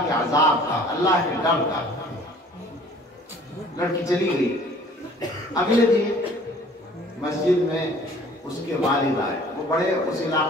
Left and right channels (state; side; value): normal; both; correlation 0.52